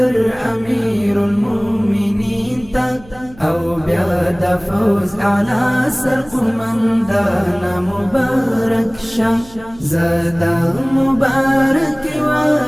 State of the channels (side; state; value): right; noise; hum, 23 dB below the sound